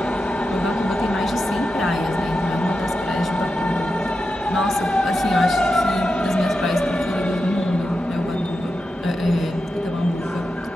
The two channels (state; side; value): normal; both; correlation 0.89